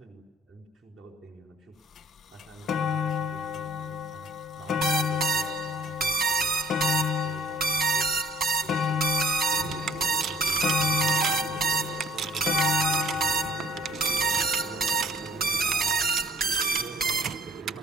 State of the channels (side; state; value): both; normal; correlation 0.56